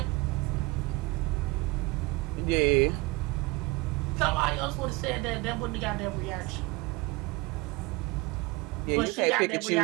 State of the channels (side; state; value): left; quieter; 23.3 dB